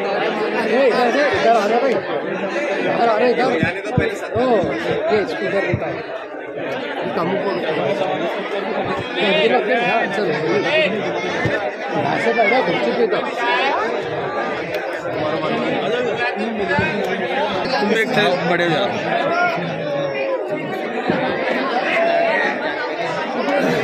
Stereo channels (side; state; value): both; identical; correlation 1.00